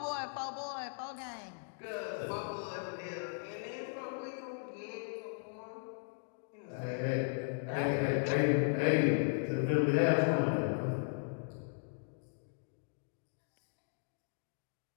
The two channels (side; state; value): right; silent; digital silence